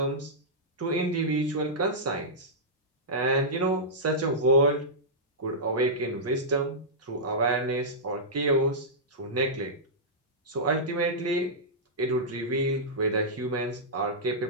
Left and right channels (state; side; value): normal; both; correlation -0.13